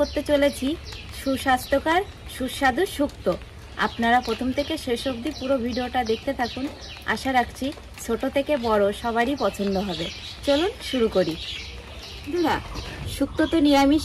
চলেছি সুস্বাস্থ্যকর সুস্বাদু শুক্তো। আপনারা প্রথম থেকে শেষ অবধি পুরো ভিডিওটা দেখতে থাকুন। আশা রাখছি ছোট থেকে বড় সবারই পছন্দ হবে। চলুন শুরু করি। বন্ধুরা, শুক্তো তো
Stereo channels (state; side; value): identical; both; correlation 1.00